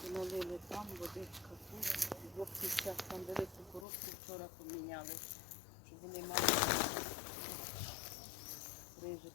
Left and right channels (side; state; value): right; drops out; at 3.9 s